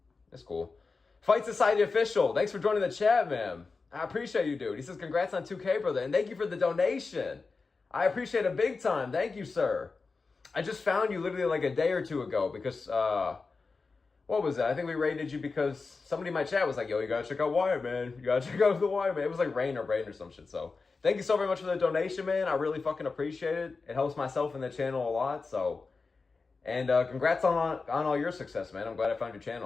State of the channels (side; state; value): right; quieter; 4.3 dB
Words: It's cool. Fight Society Official, thanks for joining the chat, man. I appreciate you, dude. He says, congrats on 2K, brother, and thank you for the donation. I appreciate it big time. Thank you, sir. I just found you literally like a day or two ago because, what was that? I think we rated you because somebody in my chat was like, yo, you gotta check out Wyatt, man. You gotta check out the Wyatt, man. It was like Rain or some shit, so. Thank you so very much for the donation, man. I really fucking appreciate it. It helps myself and the channel a lot, so. And congrats on all your success, man. I'm glad I found your